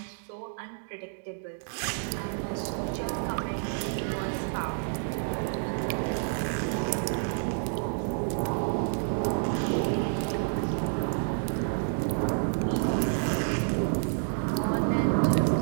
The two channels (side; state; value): left; silent; digital silence